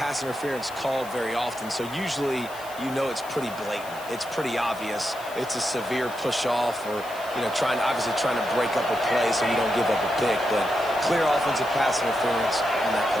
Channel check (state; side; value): noise; left; hiss, 18 dB below the sound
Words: interference called very often, so usually you know it's pretty blatant. It's pretty obvious. It's a severe push-off or, obviously trying to break up a play so you don't give up a pick, but clear offensive pass interference on that